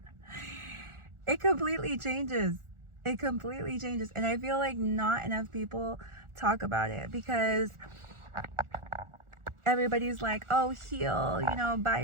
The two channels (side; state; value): left; late; 1.4 ms